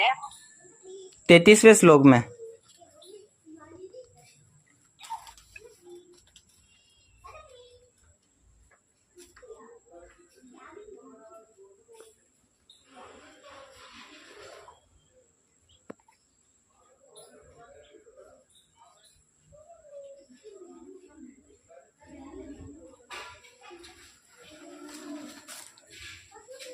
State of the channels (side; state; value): both; identical; correlation 1.00